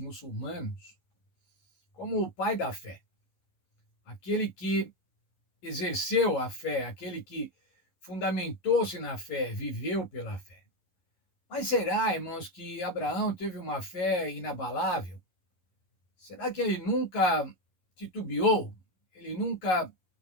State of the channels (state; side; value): late; right; 11 ms